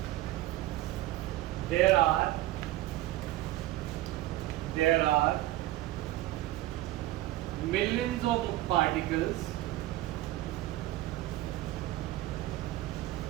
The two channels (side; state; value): left; quieter; 16.0 dB